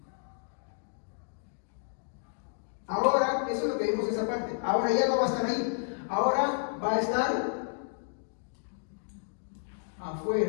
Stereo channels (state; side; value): silent; right; digital silence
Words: Ahora, eso es lo que vimos en esa parte. Ahora ya no va a estar ahí. Ahora va a estar